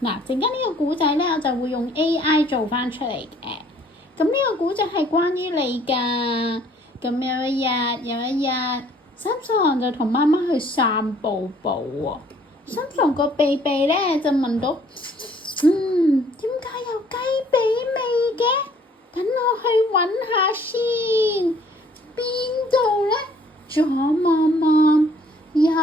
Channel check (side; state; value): both; normal; correlation 0.59